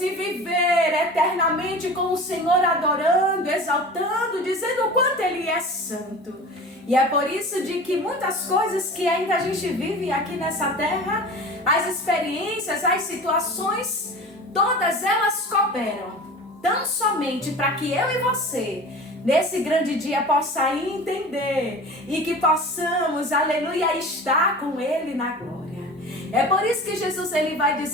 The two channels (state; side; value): normal; both; correlation 0.37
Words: viver eternamente com o Senhor, adorando, exaltando, dizendo o quanto Ele é santo. E é por isso de que muitas coisas que ainda a gente vive aqui nessa terra, as experiências, as situações, todas elas cooperam tão somente para que eu e você, nesse grande dia, possa entender e que possamos, aleluia, estar com Ele na glória. É por isso que Jesus, ele vai